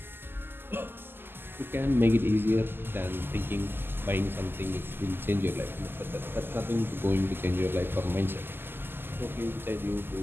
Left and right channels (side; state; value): left; late; 0.10 ms